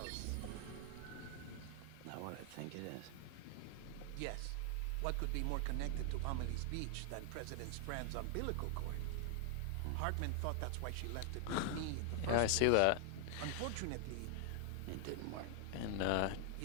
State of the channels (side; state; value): both; different; correlation 0.00